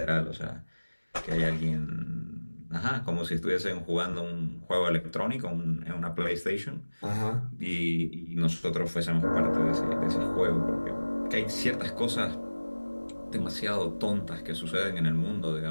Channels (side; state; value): both; inverted; correlation -1.00